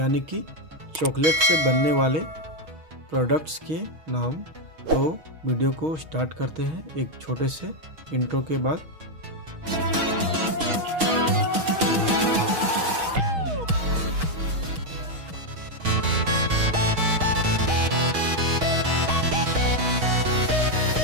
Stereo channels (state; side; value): late; left; 6.3 ms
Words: कि चॉकलेट से बनने वाले प्रोडक्ट्स के नाम। तो वीडियो को स्टार्ट करते हैं एक छोटे से इंट्रो के बाद।